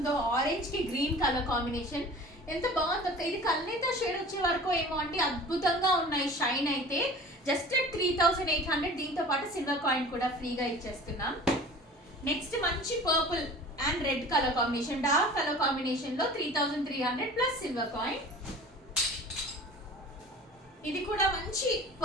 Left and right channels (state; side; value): normal; both; correlation 0.42